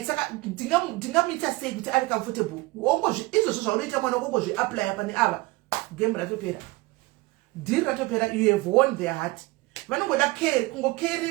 saka ndingamuita sei kuti ave comfortable izvozvo zvaunoita mwana ukongozviaplya pane ava game ratopera deal ratopera. You have won their heart. Vanongoda care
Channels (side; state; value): left; quieter; 21.9 dB